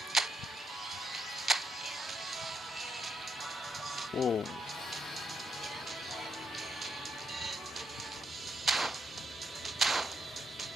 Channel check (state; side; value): normal; both; correlation 0.79